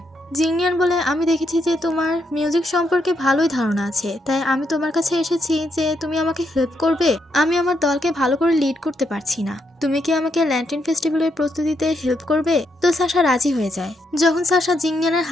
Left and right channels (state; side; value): normal; both; correlation 0.78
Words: জিংনিয়ান বলে আমি দেখেছি যে তোমার মিউজিক সম্পর্কে ভালোই ধারণা আছে, তাই আমি তোমার কাছে এসেছি যে তুমি আমাকে হেল্প করবে। আমি আমার দলকে ভালো করে লিড করতে পারছি না, তুমি কি আমাকে ল্যান্টেন ফেস্টিভ্যালের প্রস্তুতিতে হেল্প করবে? তো সাশা রাজি হয়ে যায়। যখন সাশা জিংনিয়ানের